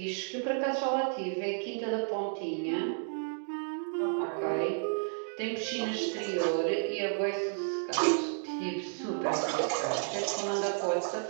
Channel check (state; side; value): silent; left; digital silence